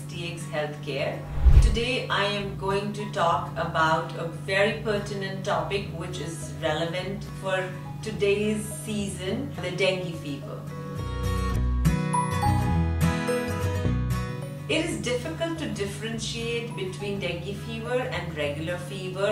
Healthcare. Today I am going to talk about a very pertinent topic which is relevant for today's season, the dengue fever. It is difficult to differentiate between dengue fever and regular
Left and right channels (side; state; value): both; identical; correlation 1.00